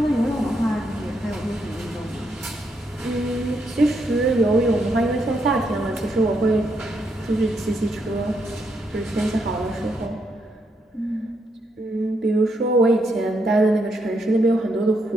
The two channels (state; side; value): normal; both; correlation 0.78